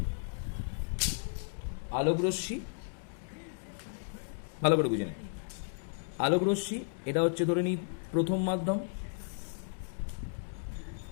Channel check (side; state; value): right; silent; digital silence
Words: ভালো করে বুঝে নে। আলোকরশ্মি এটা হচ্ছে ধরে নিই প্রথম মাধ্যম,